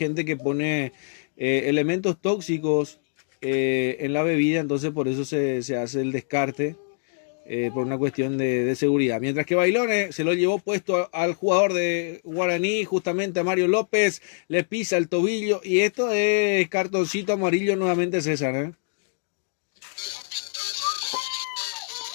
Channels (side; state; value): right; silent; 56 dB below the other